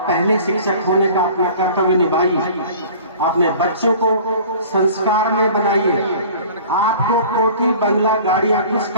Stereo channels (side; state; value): both; inverted; correlation -0.45